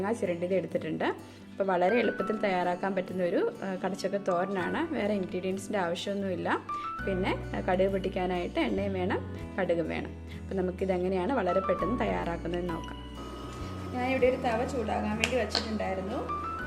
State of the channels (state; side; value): identical; both; correlation 1.00